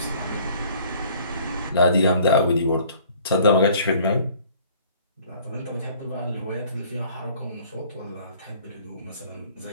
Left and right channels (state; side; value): inverted; both; correlation -0.55